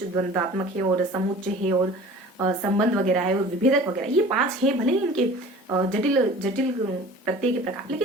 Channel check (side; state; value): both; normal; correlation 0.44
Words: द्वंदात्मक है, और समुच्चय है, और संबंध वगैरह है, और विभेदक वगैरह, ये 5 है। भले ही इनके जटिल जटिल प्रत्यय के प्रकार,